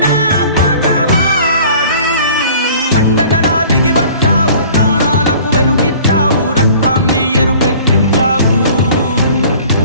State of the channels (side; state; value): both; inverted; correlation -0.48